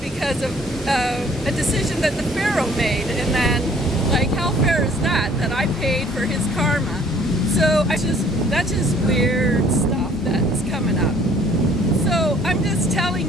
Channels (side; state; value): both; normal; correlation 0.57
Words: because of a decision that the Pharaoh made. And then, like, how fair is that I paid for his karma? So that's just weird stuff that's coming up. So I'm just telling